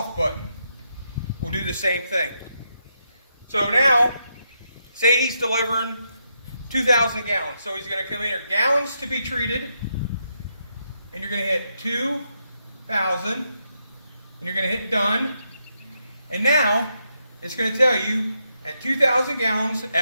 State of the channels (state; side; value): inverted; both; correlation -0.81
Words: button. We'll do the same thing. So now, say he's delivering 2,000 gallons. So he's going to come in here, gallons to be treated, and you're going to hit 2,000, and you're going to hit done. And now, it's going to tell you, at 2,000 gallons,